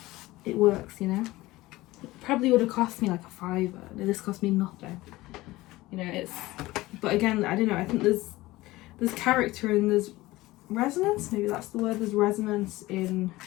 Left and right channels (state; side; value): quieter; right; 18.7 dB